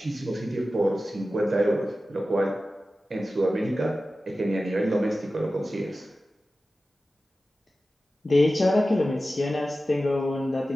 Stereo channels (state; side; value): normal; both; correlation 0.94